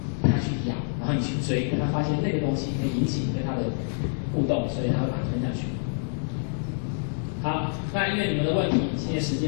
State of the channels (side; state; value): right; silent; 60 dB below the other